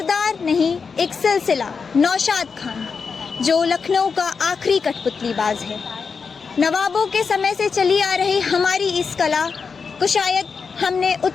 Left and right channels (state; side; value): quieter; right; 5.4 dB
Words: नहीं एक सिलसिला, नौशाद खान, जो लखनऊ का आखिरी कठपुतलीबाज है। नवाबों के समय से चली आ रही हमारी इस कला को शायद हमने